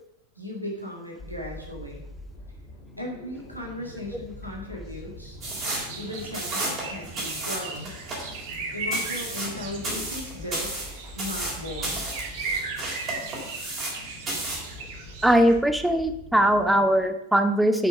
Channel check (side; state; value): both; normal; correlation 0.64